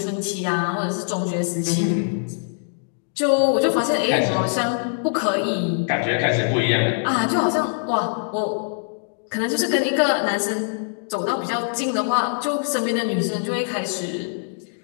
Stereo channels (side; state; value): right; silent; digital silence